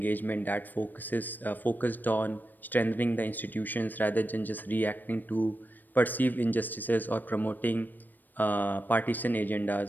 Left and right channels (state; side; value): late; right; 0.089 ms